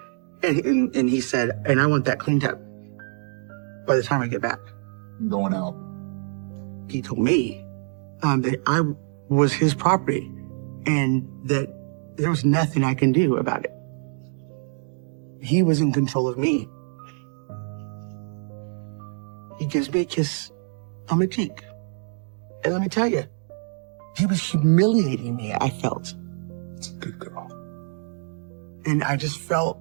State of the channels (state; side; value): silent; left; 56 dB below the other